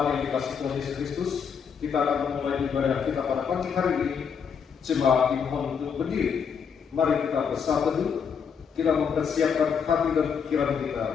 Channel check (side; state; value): right; quieter; 6.8 dB